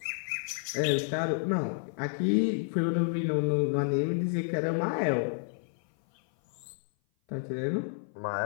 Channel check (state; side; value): silent; right; 56 dB below the other